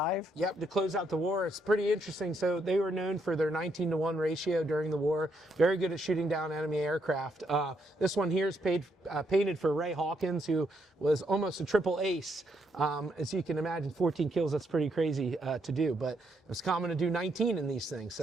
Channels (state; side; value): normal; both; correlation 0.76